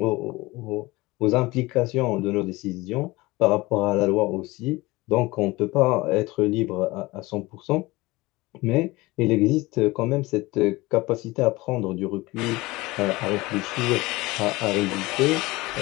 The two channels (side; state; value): right; quieter; 21.1 dB